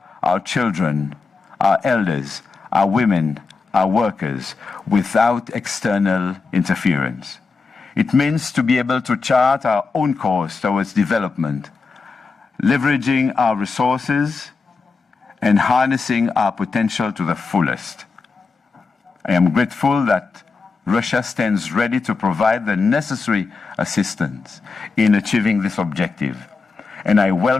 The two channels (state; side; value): quieter; right; 4.4 dB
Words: our children, our elders, our women, our workers, without external interference. It means to be able to chart our own course towards development, leveraging our resources and harnessing our potential to the fullest. I am grateful that Russia stands ready to provide the necessary assistance in achieving this objective, and I